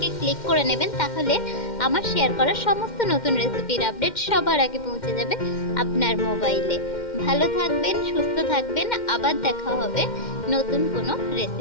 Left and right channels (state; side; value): late; right; 2.1 ms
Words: ক্লিক করে নেবেন, তাহলে আমার শেয়ার করা সমস্ত নতুন রেসিপির আপডেট সবার আগে পৌঁছে যাবে আপনার মোবাইলে। ভালো থাকবেন, সুস্থ থাকবেন, আবার দেখা হবে নতুন কোনো